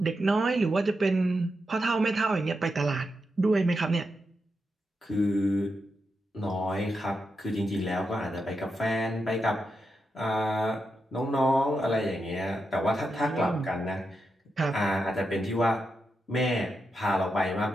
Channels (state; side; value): normal; both; correlation 0.86